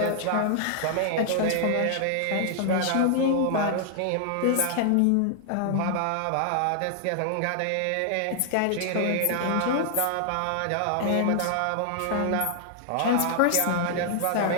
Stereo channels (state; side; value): different; both; correlation 0.00